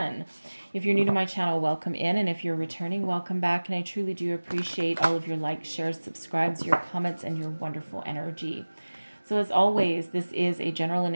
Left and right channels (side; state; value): both; inverted; correlation -1.00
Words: If you're new to my channel, welcome in, and if you're returning, welcome back, and I truly do appreciate all of your likes, shares, subscribes, your comments, and your wonderful energy. So as always, this is a general and